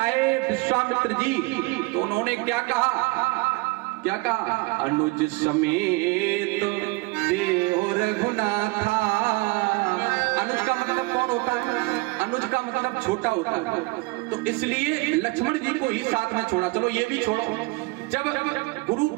विश्वामित्र जी, तो उन्होंने क्या कहा? अनुज समेत देहो रघुनाथा। अनुज का मतलब कौन होता है? अनुज का मतलब छोटा होता है, तो इसलिए लक्ष्मण जी को ही साथ में छोड़ा। चलो ये भी छोड़ो, जब गुरु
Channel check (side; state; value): left; quieter; 24.0 dB